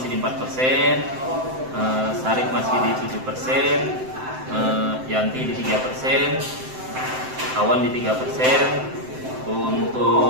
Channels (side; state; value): left; late; 7.7 ms